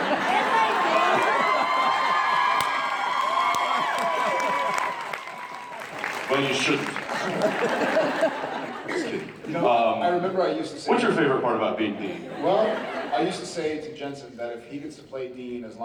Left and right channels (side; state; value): both; identical; correlation 1.00